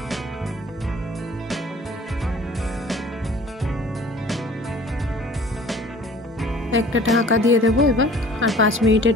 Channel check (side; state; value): both; normal; correlation 0.49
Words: একটা ঢাকা দিয়ে দেবো এবার, আর 5 মিনিটের